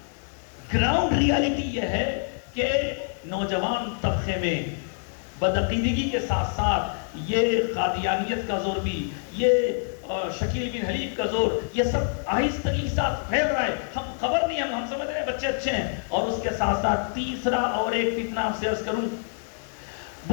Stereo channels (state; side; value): silent; right; 58 dB below the other